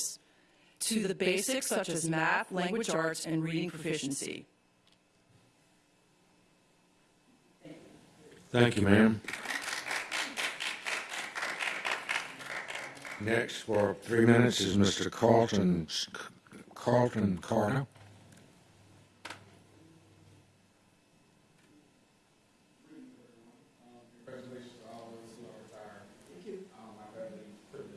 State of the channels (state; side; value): identical; both; correlation 1.00